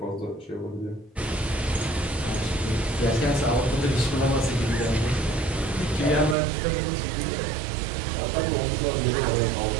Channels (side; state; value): left; drops out; at 6.4 s